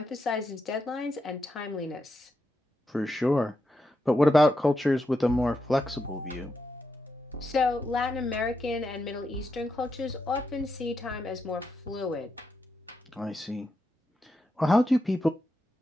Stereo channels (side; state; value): both; normal; correlation 0.85